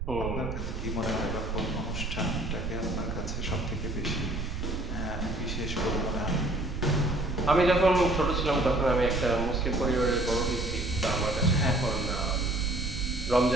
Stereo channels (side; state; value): right; noise; rumble, 5 dB below the sound